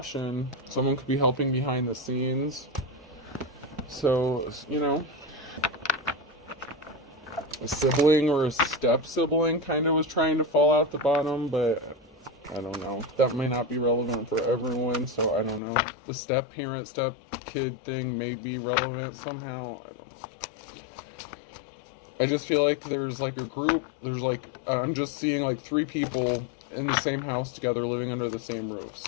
Someone could be helping behind the scenes. So, a sibling or a step sibling kind of was trying to fall out the bottom, but I don't know. That may not be relevant for everyone, so I don't know. The step parent, step kid thing may be relevant somehow. I don't know. I just feel like there's like a group. There's like, I'm just seeing like 3 people in the same house together living under the same roof.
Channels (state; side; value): drops out; right; at 15.6 s